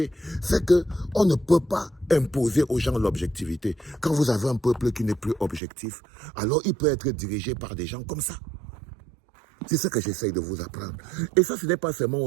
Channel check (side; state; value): left; drops out; at 5.6 s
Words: fait qu'on ne peut pas imposer aux gens l'objectivité. Quand vous avez un peuple qui n'est plus objectif, alors il peut être dirigé par des gens comme ça. C'est ce que j'essaye de vous apprendre. Et ça, ce n'est pas seulement